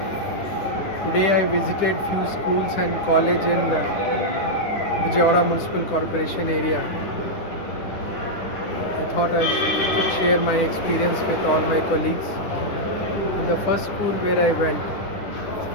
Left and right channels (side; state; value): right; late; 10 ms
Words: I visited few schools and college in Vijaywada Municipal Corporation area. I thought I could share my experience with all my colleagues. In the first school where I went,